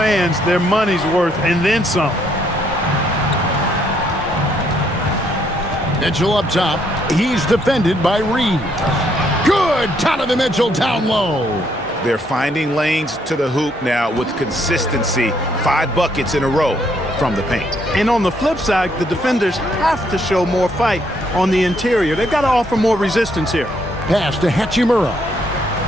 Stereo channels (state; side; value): normal; both; correlation 0.71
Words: their money's worth and then some. Mitchell up top. He's defended by Reed. Good! Donovan Mitchell down low. They're finding lanes to the hoop now with consistency. 5 buckets in a row from the paint. And on the flip side, the defenders have to show more fight on the interior. They've got to offer more resistance here. Pass to Hachimura.